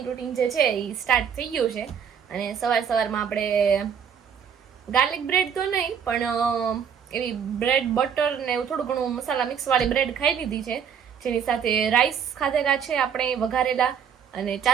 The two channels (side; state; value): left; quieter; 7.6 dB